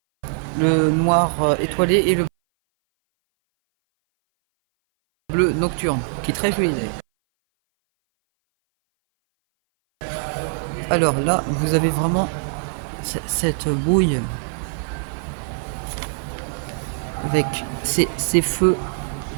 le noir étoilé et le bleu nocturne, qui est très joli. Alors là, vous avez vraiment cette bouille avec ces feux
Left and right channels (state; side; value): silent; left; 59 dB below the other